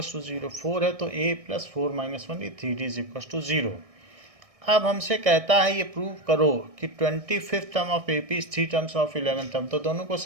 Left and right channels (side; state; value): left; late; 1.6 ms